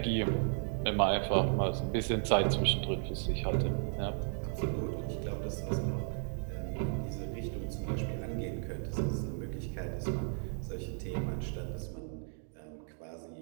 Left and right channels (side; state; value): left; silent; 55 dB below the other